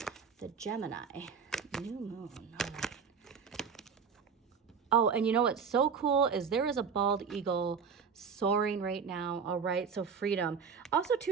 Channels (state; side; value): quieter; left; 6.2 dB